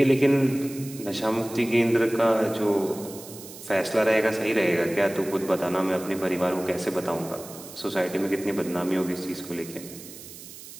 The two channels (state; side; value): noise; right; hiss, 15 dB below the sound